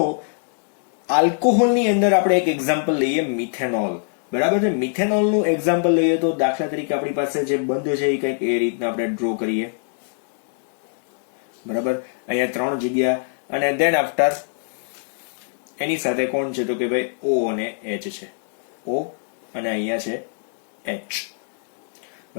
આલ્કોહોલની અંદર આપણે એક એક્ઝામ્પલ લઈએ, મિથેનોલ. બરાબર છે. મિથેનોલનું એક્ઝામ્પલ લઈએ તો દાખલા તરીકે આપણી પાસે જે બંધ છે એ કંઈક એ રીતના આપણે ડ્રો કરીએ. બરાબર, અહીંયા 3 જગ્યા અને દેન આફ્ટર એની સાથે કોણ છે તો કે ભાઈ O અને H છે. O અને અહીંયા છે H.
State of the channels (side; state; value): right; silent; digital silence